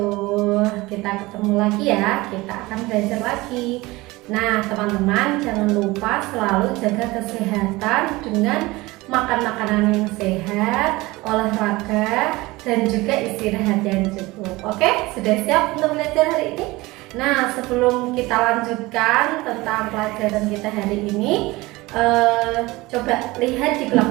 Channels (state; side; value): quieter; left; 21.0 dB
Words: Kita ketemu lagi ya, kita akan belajar lagi. Nah teman-teman, jangan lupa selalu jaga kesehatan dengan makan makanan yang sehat, olahraga, dan juga istirahat yang cukup. Oke, sudah siap untuk belajar hari ini? Nah sebelum kita lanjutkan tentang pelajaran kita hari ini, coba lihat di